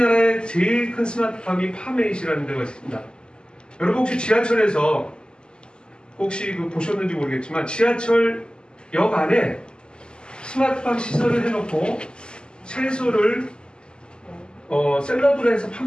제일 큰 스마트팜이 파메잇이라는 데가 있습니다. 여러분 혹시 지하철에서 혹시 보셨는지 모르겠지만 지하철역 안에 스마트팜 시설을 해놓고 채소를 샐러드로 해서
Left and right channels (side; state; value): right; late; 0.048 ms